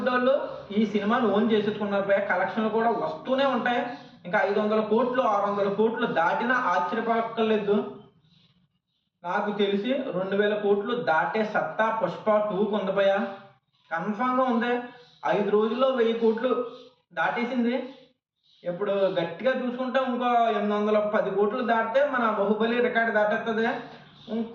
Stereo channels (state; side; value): identical; both; correlation 1.00